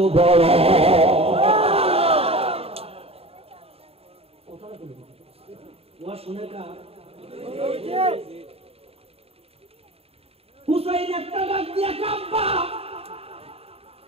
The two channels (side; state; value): left; late; 0.29 ms